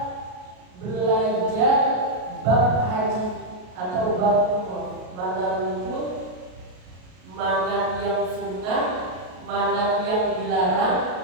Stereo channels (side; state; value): left; late; 33 ms